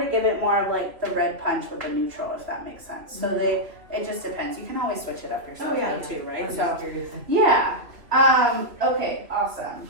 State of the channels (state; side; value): late; left; 2.8 ms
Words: to give it more of like the red punch with the neutral, if that makes sense. So it just depends. You can always switch it up yourself though, too, right? I'm So just curious. yeah. Okay, awesome.